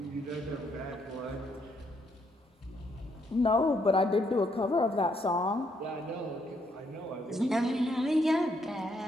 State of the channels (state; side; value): normal; both; correlation 0.73